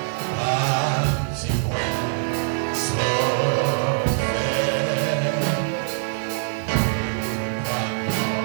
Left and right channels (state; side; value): silent; left; 62 dB below the other